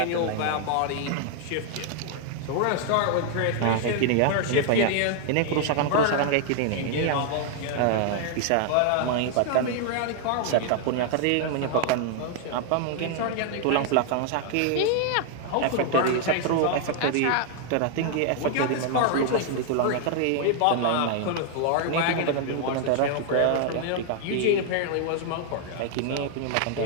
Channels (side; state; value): both; different; correlation 0.00